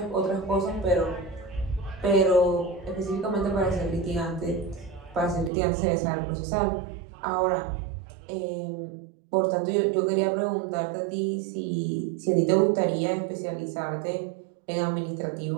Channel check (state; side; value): drops out; left; at 5.5 s